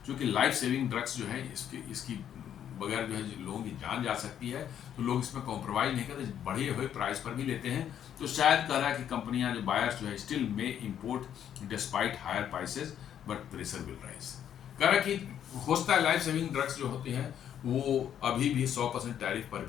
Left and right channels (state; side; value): quieter; right; 9.7 dB